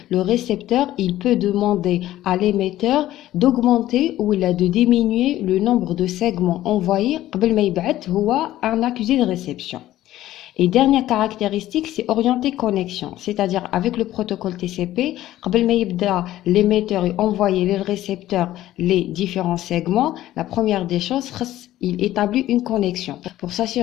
le récepteur il peut demander à l'émetteur d'augmenter ou de diminuer le nombre de segments envoyés قبل ما يبعث هو un accusé de réception. Et dernière caractéristique, c'est orienter connexion, c'est-à-dire avec le protocole TCP, l'émetteur et envoyer le récepteur les différents segments. La première des choses, il établit une connexion pour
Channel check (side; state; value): right; quieter; 14.3 dB